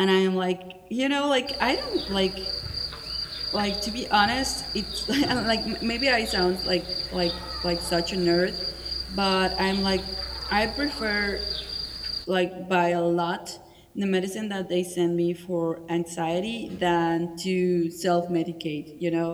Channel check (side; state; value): both; identical; correlation 1.00